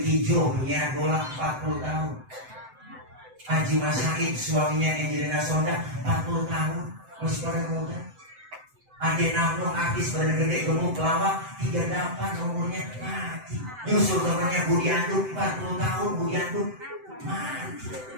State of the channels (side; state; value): left; late; 7.8 ms